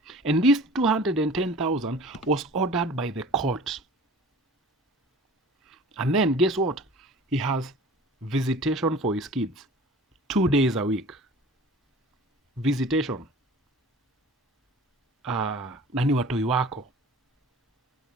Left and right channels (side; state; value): both; normal; correlation 0.43